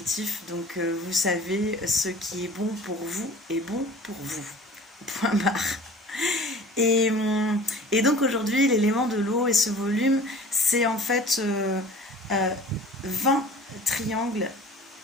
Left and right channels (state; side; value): normal; both; correlation 0.44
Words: donc vous savez, ce qui est bon pour vous est bon pour vous. Point barre. Et donc aujourd'hui, l'élément de l'eau et ce volume, c'est en fait 20 triangles